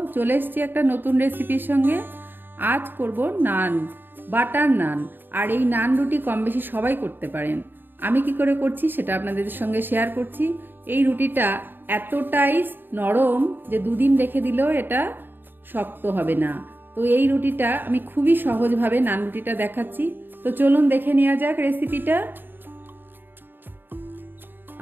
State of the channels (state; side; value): late; left; 0.094 ms